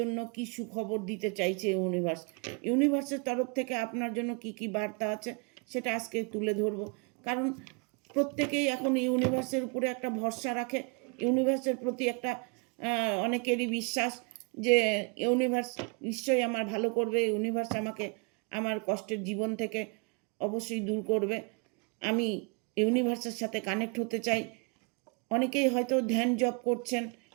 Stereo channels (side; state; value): left; quieter; 33.7 dB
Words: কি সুখবর দিতে চাইছে ইউনিভার্স, ইউনিভার্সের তরফ থেকে আপনার জন্য কি কি বার্তা আছে সেটা আজকে তুলে ধরবো। কারণ প্রত্যেকেই এখন ইউনিভার্সের উপরে একটা ভরসা রাখে, ইউনিভার্সের প্রতি একটা অনেকেরই বিশ্বাস যে ইউনিভার্স নিশ্চয়ই আমার ভালো করবে, ইউনিভার্স আমাকে আমার কষ্টের জীবন থেকে অবশ্যই দূর করবে। আমি ইউনিভার্সের সাথে কানেক্ট হতে চাই। অনেকেই হয়তো ধ্যান জপ করছেন,